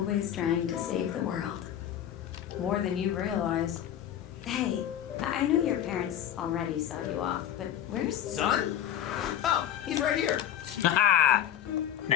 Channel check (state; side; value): quieter; right; 10.5 dB